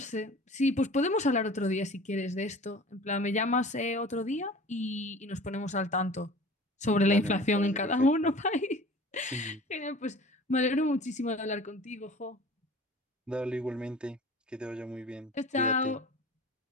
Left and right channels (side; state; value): both; normal; correlation 0.42